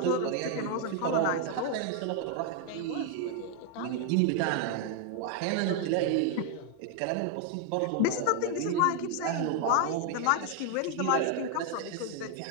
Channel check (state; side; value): different; both; correlation 0.00